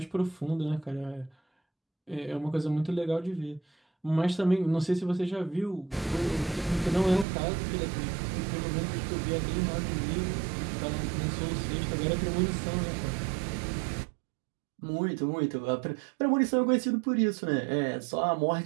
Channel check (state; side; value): drops out; left; at 7.2 s